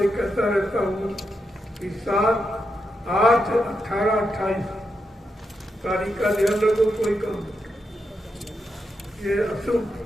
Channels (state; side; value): normal; both; correlation 0.84